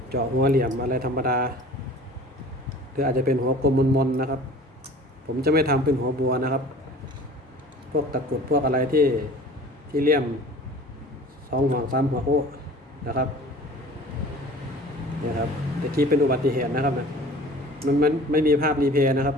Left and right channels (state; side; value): normal; both; correlation 0.44